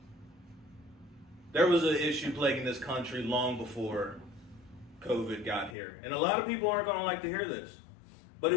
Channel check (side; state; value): right; drops out; at 5.8 s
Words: There was an issue plaguing this country long before COVID got here. And a lot of people aren't going to like to hear this. But